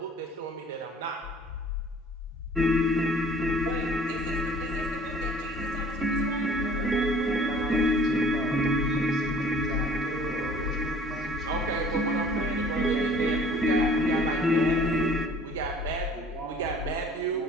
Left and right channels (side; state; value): both; normal; correlation 0.52